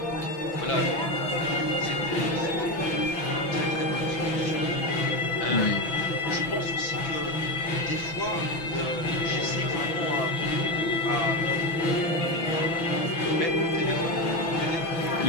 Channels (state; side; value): late; right; 6.0 ms